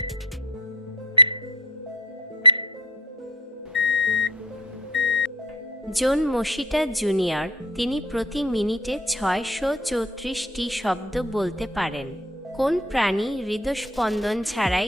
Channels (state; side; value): normal; both; correlation 0.43